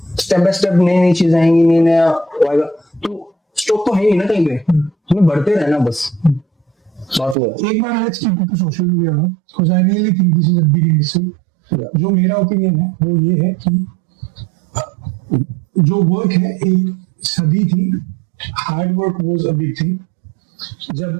बाय स्टेप नई नई चीजें आएंगी, नई नया आएगा, तो स्टॉप तो है ही ना कहीं पे, हमें बढ़ते रहना बस। बात हुआ एक बार let's keep it to social media now, because I really think this is a big industry. जो मेरा ओपिनियन है वो ये है कि जो वर्क है एक सदी थी, hard work was a big thing. जब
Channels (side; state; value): left; drops out; at 7.4 s